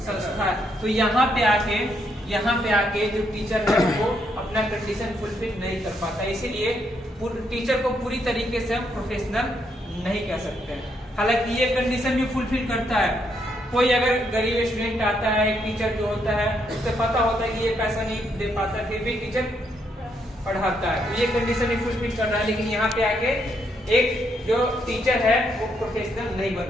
संस्था है। तो यहाँ पे आके जो टीचर है वो अपना कंडीशन फुलफिल नहीं कर पाता, इसीलिए टीचर को पूरी तरीके से हम प्रोफेशनल नहीं कह सकते। हालांकि ये कंडीशन भी फुलफिल करता है। कोई अगर गरीब स्टूडेंट आता है, एक टीचर जो होता है उससे पता होता है कि ये पैसा नहीं दे पाता, फिर भी टीचर पढ़ाता है, तो ये कंडीशन भी फुलफिल कर रहा है। लेकिन यहाँ पे आके एक जो टीचर है वो प्रोफेशनल नहीं बन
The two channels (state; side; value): normal; both; correlation 0.75